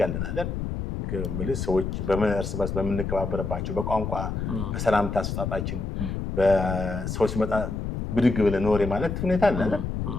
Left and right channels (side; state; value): left; noise; rumble, 3 dB below the sound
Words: ያለን አይደል? ማለት ሰዎች እርስ በርስ በምንከባበርባቸው በቋንቋ በሰላምታ አሰጣጣችን በሰዎች ሲመጣ ብድግ ብለን ኖሬ ማለት ሁኔታ አለ አይደል?